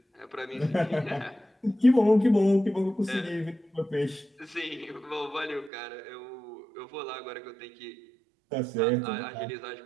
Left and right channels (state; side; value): drops out; left; at 5.7 s